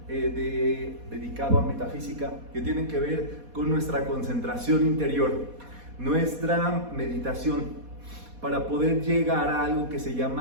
dedicado a metafísica, que tiene que ver con nuestra concentración interior, nuestra meditación, para poder llegar a algo que se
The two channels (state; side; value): late; left; 4.2 ms